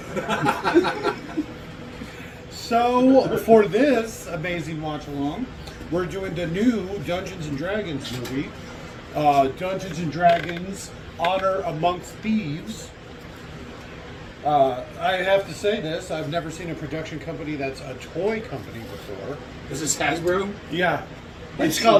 so for this amazing watch along, we're doing the new Dungeons and Dragons movie. Dungeons and Dragons Honor Amongst Thieves. I have to say this, I've never seen a production company that's a toy company before. Is this Hasbro? Yeah. It's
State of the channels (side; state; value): both; identical; correlation 1.00